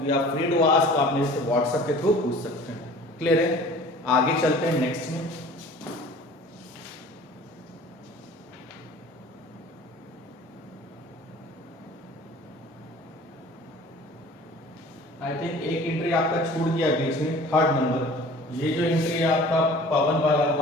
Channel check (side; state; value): both; normal; correlation 0.46